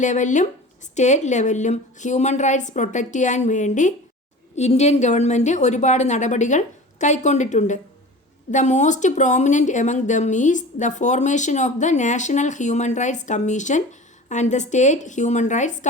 ലെവലിലും state ലെവലിലും human rights protect ചെയ്യാൻ വേണ്ടി ഇന്ത്യൻ ഗവൺമെൻറ് ഒരുപാട് നടപടികൾ കൈക്കൊണ്ടിട്ടുണ്ട്. The most prominent among them is the formation of the national human rights commission and the state human rights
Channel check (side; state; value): both; normal; correlation 0.37